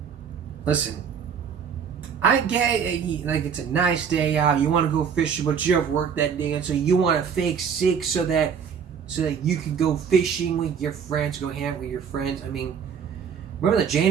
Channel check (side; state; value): left; quieter; 7.0 dB